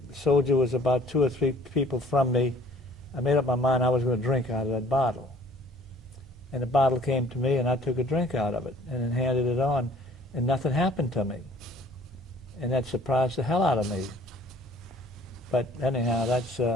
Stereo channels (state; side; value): normal; both; correlation 0.55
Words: soldier was about 2 or 3 people from me. I made up my mind I was going to drink out of that bottle. And the bottle came to me, and I took a drink out of it and then handed it on, and nothing happened to me. And that surprised the hell out of me. But anyhow, that's